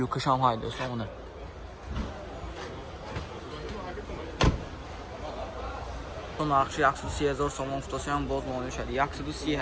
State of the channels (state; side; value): identical; both; correlation 1.00